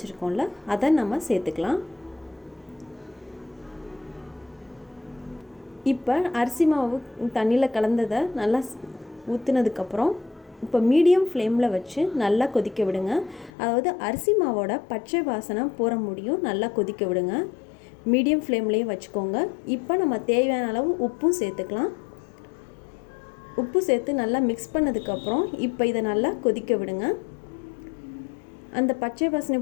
அதை நம்ம சேர்த்துக்கலாம். இப்போ அரிசி மாவு தண்ணியில் கலந்ததை நல்லா ஊற்றுனதுக்கப்புறம் இப்போ மீடியம் ஃப்ளேமில் வச்சு நல்லா கொதிக்க விடுங்க. அதாவது அரிசி மாவோட பச்சை வாசனை போகிற முடியும் நல்லா கொதிக்க விடுங்க. மீடியம் ஃப்ளேம்லேயே வச்சுக்கோங்க. இப்போ நம்ம தேவையான அளவு உப்பும் சேர்த்துக்கலாம். உப்பு சேர்த்து நல்லா மிக்ஸ் பண்ணதுக்கப்புறம் இப்போ இதை நல்லா கொதிக்க விடுங்க. அந்த பச்சை வாசனை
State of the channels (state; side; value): drops out; right; at 13.5 s